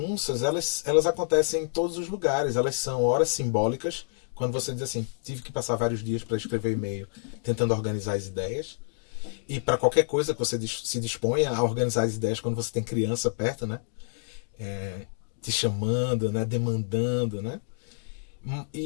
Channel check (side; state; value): right; silent; digital silence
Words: elas acontecem em todos os lugares. Elas são horas simbólicas, quando você diz assim, tive que passar vários dias para escrever e-mail tentando organizar as ideias. E para qualquer coisa que você se disponha a organizar as ideias quando você tem criança perto, né? Te chamando, né? Demandando, né?